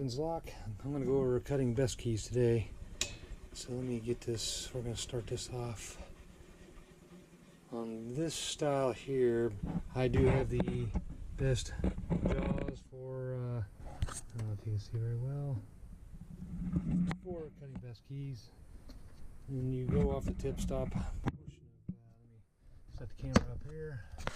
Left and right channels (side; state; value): both; identical; correlation 1.00